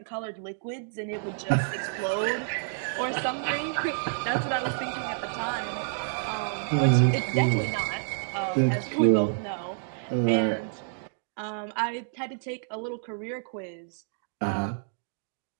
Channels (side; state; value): left; silent; digital silence